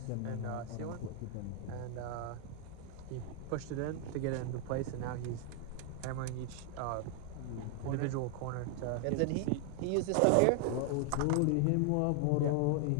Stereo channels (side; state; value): both; different; correlation 0.00